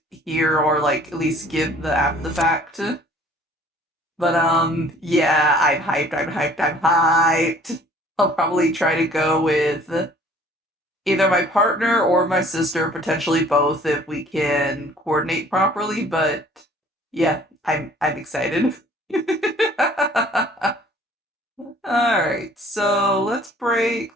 here, or like at least give the after the fact. But yeah, I'm hyped. I'll probably try to go with either my partner or my sister, potentially both if we can coordinate properly, but yeah, I'm excited. Alright, so let's break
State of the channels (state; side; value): normal; both; correlation 0.54